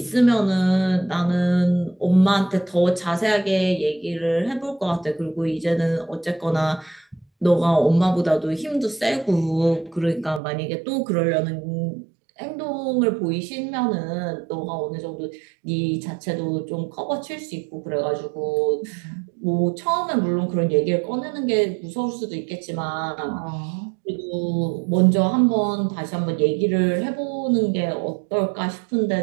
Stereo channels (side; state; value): left; drops out; at 10.4 s